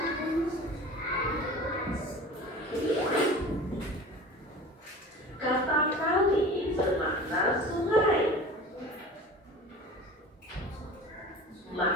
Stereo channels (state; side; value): normal; both; correlation 0.38